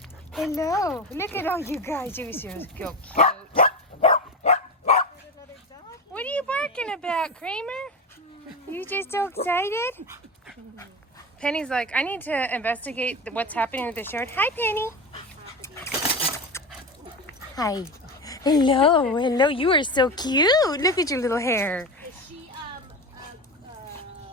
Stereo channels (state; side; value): normal; both; correlation 0.23